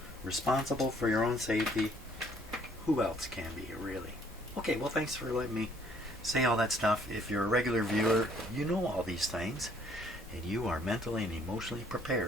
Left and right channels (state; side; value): normal; both; correlation 0.62